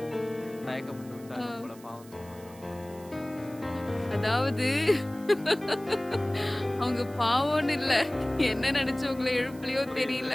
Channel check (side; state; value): right; noise; hiss, 23 dB below the sound